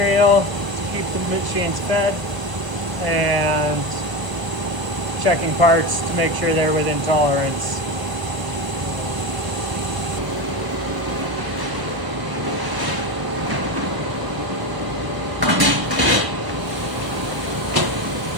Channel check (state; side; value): late; left; 1.0 ms